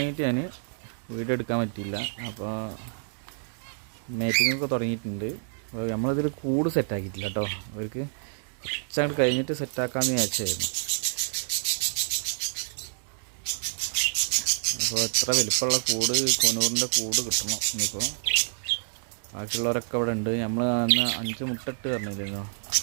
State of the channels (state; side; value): silent; left; digital silence